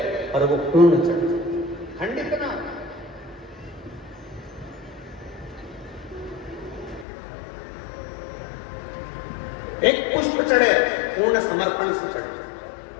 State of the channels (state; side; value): drops out; right; at 7.1 s